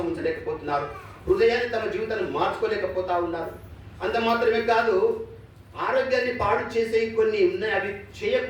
ఉంచలేకపోతున్నారు. హృదయాన్ని తమ జీవితాన్ని మార్చుకోలేకపోతా ఉన్నారు. అంత మాత్రమే కాదు, ఆరోగ్యాన్ని పాడు చేసే కొన్ని ఉన్నాయి, అవి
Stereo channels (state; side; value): identical; both; correlation 1.00